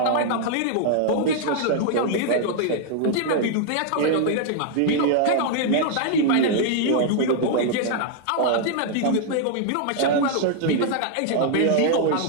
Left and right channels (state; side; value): different; both; correlation 0.00